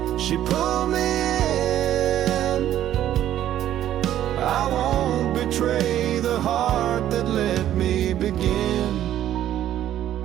she pulled me in. I won't betray the heart that let me begin.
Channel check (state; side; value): quieter; left; 11.9 dB